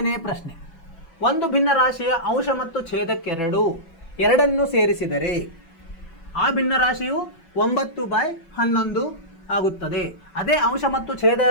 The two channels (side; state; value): right; late; 6.0 ms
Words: ಪ್ರಶ್ನೆ. ಒಂದು ಭಿನ್ನ ರಾಶಿಯ ಅಂಶ ಮತ್ತು ಛೇದಕ್ಕೆರಡು ಎರಡನ್ನು ಸೇರಿಸಿದರೆ ಆ ಭಿನ್ನ ರಾಶಿಯು 9/11 ಆಗುತ್ತದೆ. ಅದೇ ಅಂಶ ಮತ್ತು